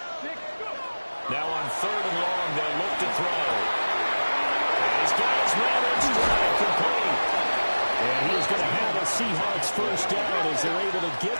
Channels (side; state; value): both; inverted; correlation -1.00